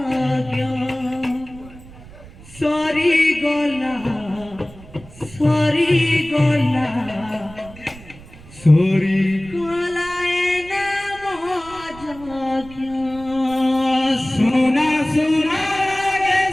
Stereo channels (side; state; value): right; noise; rumble, 19 dB below the sound